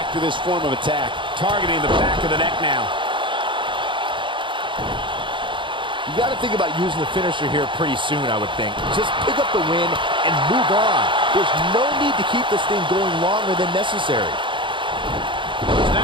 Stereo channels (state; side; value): late; left; 0.24 ms